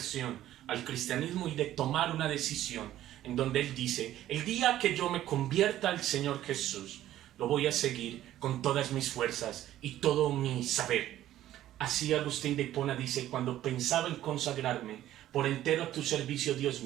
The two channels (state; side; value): quieter; left; 13.2 dB